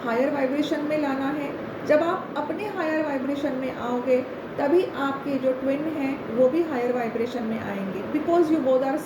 हायर वाइब्रेशन में लाना है। जब आप अपने हायर वाइब्रेशन में आओगे तभी आपके जो ट्विन हैं वो भी हायर वाइब्रेशन में आएंगे, because you both are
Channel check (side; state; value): both; identical; correlation 1.00